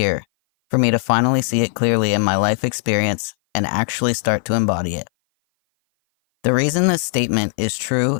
for me to finally see it clearly in my life experience and actually start to embody it. The reason this statement is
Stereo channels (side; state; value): right; silent; 58 dB below the other